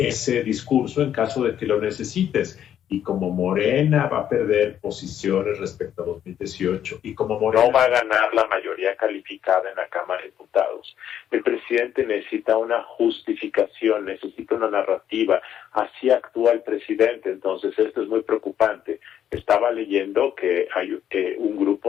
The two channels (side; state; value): right; quieter; 10.0 dB